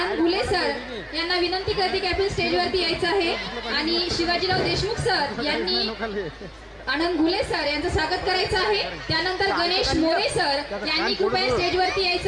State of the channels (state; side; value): identical; both; correlation 1.00